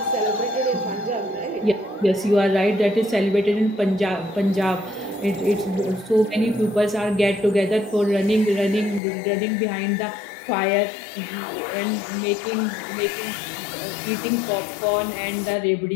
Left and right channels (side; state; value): right; drops out; at 9.0 s